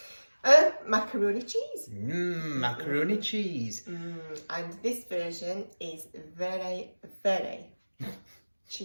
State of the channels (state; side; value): inverted; both; correlation -1.00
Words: Macaroni cheese. Macaroni cheese. And this version is very, very